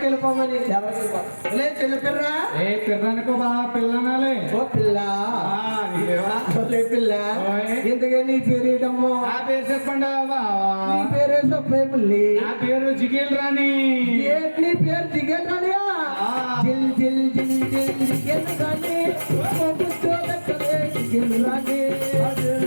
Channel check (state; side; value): inverted; both; correlation -1.00